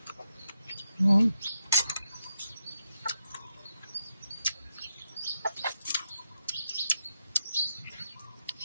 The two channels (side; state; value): both; inverted; correlation -0.83